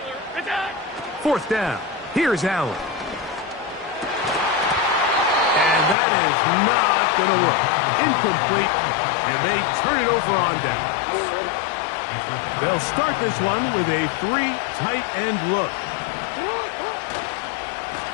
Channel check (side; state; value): right; drops out; at 6.0 s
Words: Attack! 4th down. Here's Allen. And that is not going to work. Incomplete. And they turn it over on down. They'll start this one with a 3 tight end look.